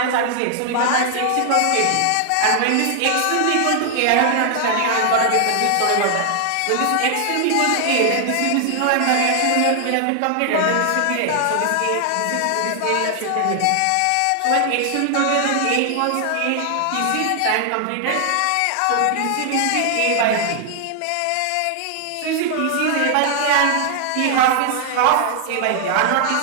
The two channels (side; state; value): both; different; correlation 0.00